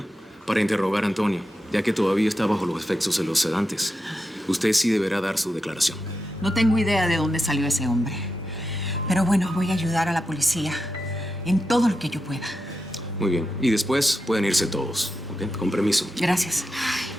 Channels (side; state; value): both; normal; correlation 0.88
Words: para interrogar a Antonio, ya que todavía está bajo los efectos de los sedantes. Usted sí deberá dar su declaración. No tengo idea de dónde salió ese hombre. Pero bueno, voy a ayudar a la policía en todo lo que yo pueda. Muy bien. Y después pueden irse todos, ¿ok? Con permiso. Gracias.